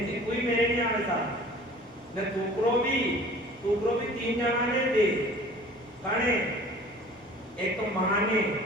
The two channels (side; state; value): both; normal; correlation 0.46